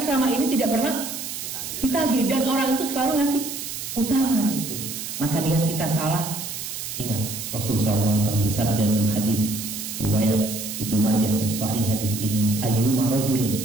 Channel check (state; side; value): noise; right; hiss, 7 dB below the sound